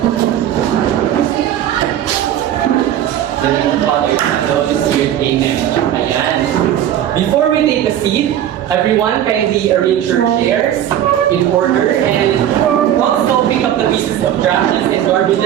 The name of the Father, and the Holy Spirit, Amen. Ayan. Before we take a seat, everyone kindly arrange your chairs in order and also pick up the pieces of drafts and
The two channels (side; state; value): left; quieter; 11.1 dB